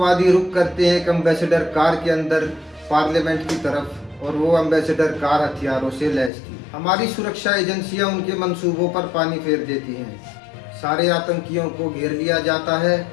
रुक करते हैं एक एम्बेसडर कार के अंदर पार्लियामेंट की तरफ, और वो एम्बेसडर कार हथियारों से लैस थी। हमारी सुरक्षा एजेंसियां उनके मंसूबों पर पानी फेर देती हैं। सारे आतंकियों को घेर लिया जाता है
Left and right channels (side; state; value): right; drops out; at 6.3 s